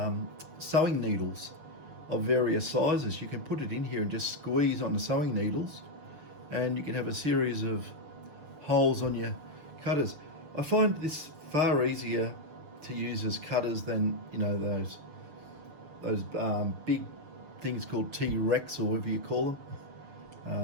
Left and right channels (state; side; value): late; left; 6.6 ms